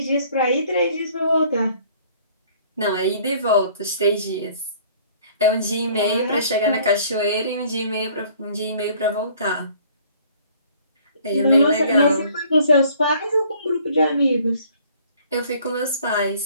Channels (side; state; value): both; inverted; correlation -0.56